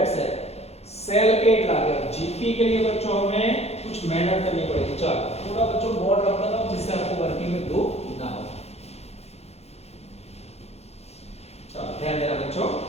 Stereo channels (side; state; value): right; late; 0.31 ms